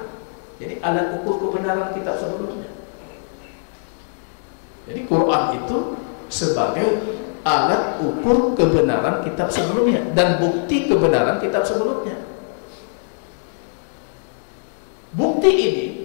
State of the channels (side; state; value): right; silent; digital silence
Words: Jadi alat ukur kebenaran kitab sebelumnya. Jadi Quran itu sebagai alat ukur kebenaran kitab sebelumnya dan bukti kebenaran kitab sebelumnya. Bukti ini